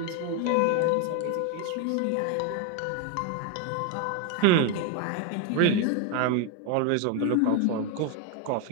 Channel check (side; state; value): both; different; correlation 0.01